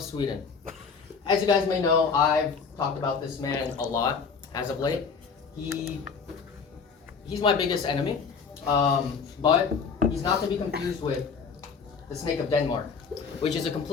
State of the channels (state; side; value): quieter; right; 5.6 dB